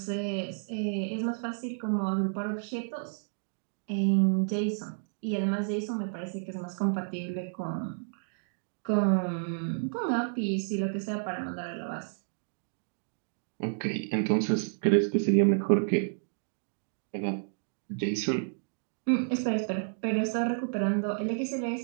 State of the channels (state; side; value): silent; left; digital silence